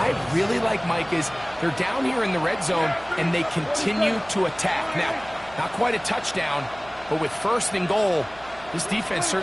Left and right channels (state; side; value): noise; right; hum, 23 dB below the sound